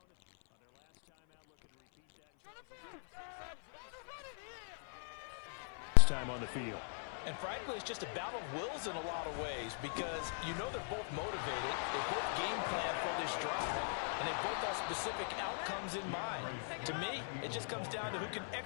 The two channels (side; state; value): right; silent; 51 dB below the other